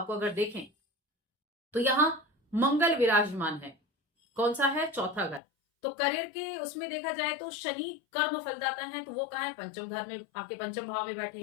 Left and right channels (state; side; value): drops out; right; at 5.4 s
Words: को अगर देखें तो यहां मंगल विराजमान है। कौन सा है? चौथा घर। तो करियर के उसमें देखा जाए तो शनि कर्म फलदाता है, तो वो कहाँ है? पंचम घर में, आपके पंचम भाव में बैठे